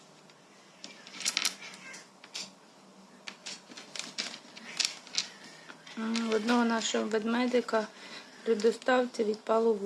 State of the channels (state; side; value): identical; both; correlation 1.00